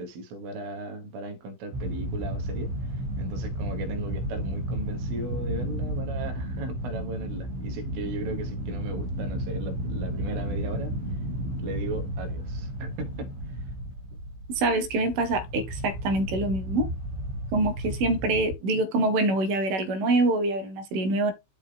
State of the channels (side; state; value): left; late; 16 ms